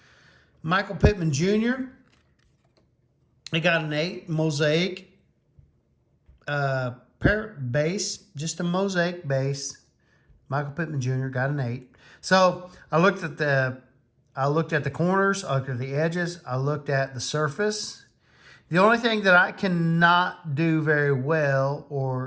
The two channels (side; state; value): both; identical; correlation 1.00